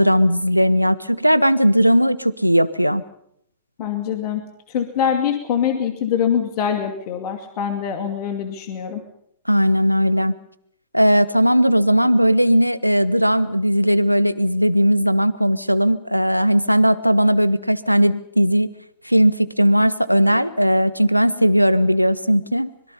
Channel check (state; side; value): inverted; both; correlation -0.92